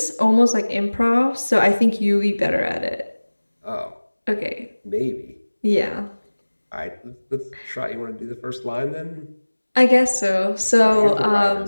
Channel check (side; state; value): both; inverted; correlation -1.00